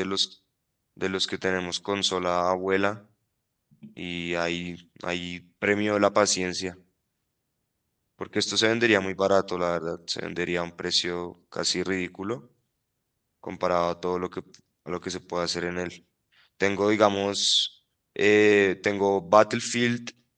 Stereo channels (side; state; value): both; identical; correlation 1.00